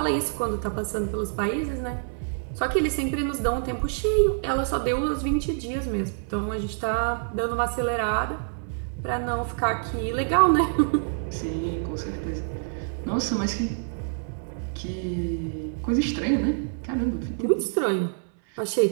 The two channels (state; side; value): silent; left; 61 dB below the other